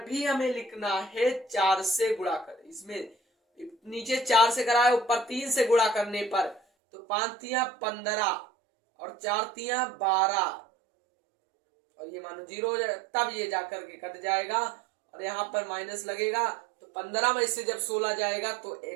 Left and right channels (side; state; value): left; drops out; at 6.6 s